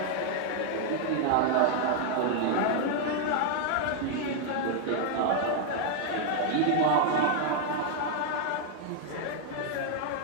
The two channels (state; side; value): different; both; correlation 0.00